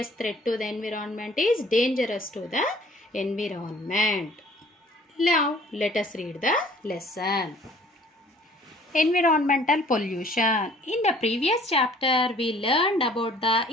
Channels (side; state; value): both; normal; correlation 0.55